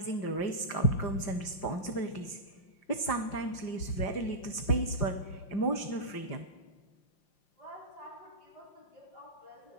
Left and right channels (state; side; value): late; right; 5.7 ms